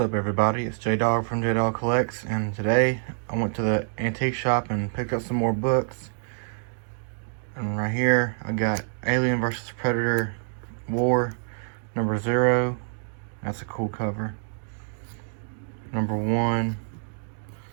up, everybody? It's J-Dog from J-Dog Collects, and today I went to the antique shop and picked up some more books. And right here I got Alien vs. Predator War number 0. That's a cool cover. Number 1,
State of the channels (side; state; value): left; silent; digital silence